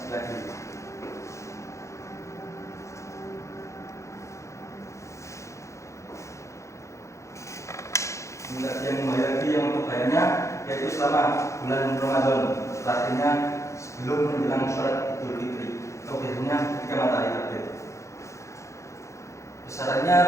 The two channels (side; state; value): right; late; 0.14 ms